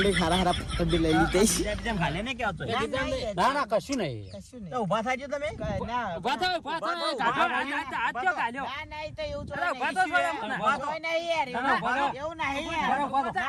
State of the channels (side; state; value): both; identical; correlation 1.00